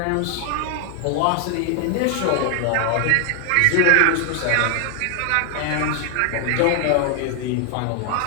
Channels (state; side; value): different; both; correlation 0.00